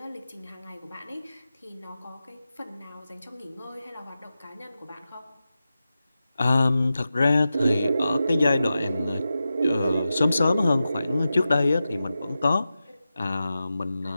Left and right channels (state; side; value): inverted; both; correlation -0.92